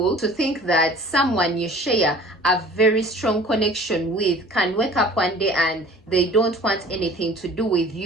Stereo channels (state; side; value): normal; both; correlation 0.46